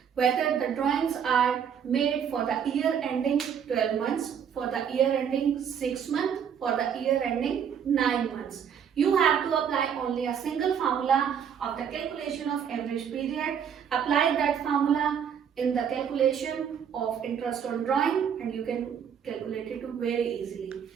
whether the drawings are made for the year ending 12 months, for the year ending 6 months, for the year ending 9 months. You have to apply only a single formula of the calculation of average period. Apply that formula in the calculation of interest on drawing and you can calculate it very easily.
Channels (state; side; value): quieter; left; 7.9 dB